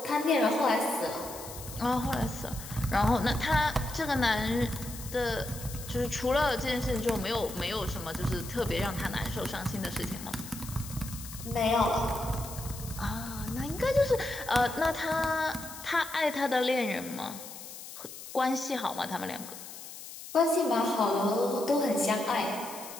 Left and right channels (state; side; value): noise; left; hiss, 13 dB below the sound